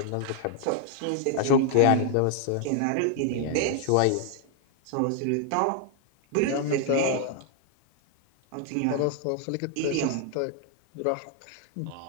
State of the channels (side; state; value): both; different; correlation 0.00